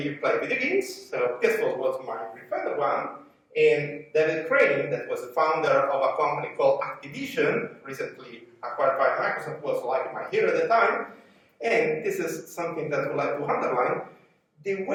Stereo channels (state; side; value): identical; both; correlation 1.00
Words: you play video games. So this was my preferred one. And David Crane, that was the founder of a company called Activision, recently acquired by Microsoft, was like my hero at the time. And this is something that I would like to underline. The